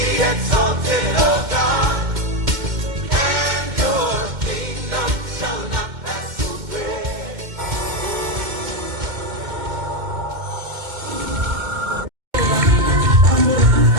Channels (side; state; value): left; late; 2.1 ms